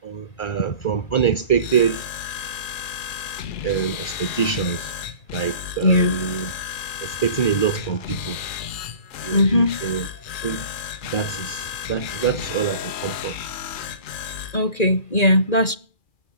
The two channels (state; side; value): late; right; 2.4 ms